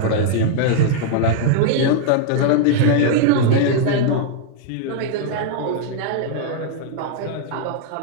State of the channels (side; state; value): both; different; correlation -0.01